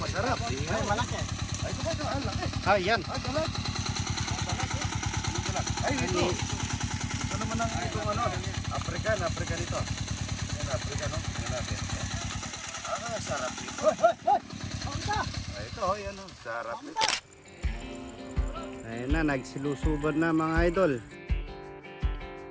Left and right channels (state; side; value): identical; both; correlation 1.00